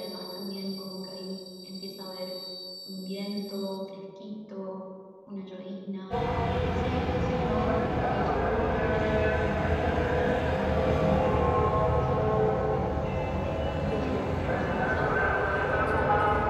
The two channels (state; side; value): identical; both; correlation 1.00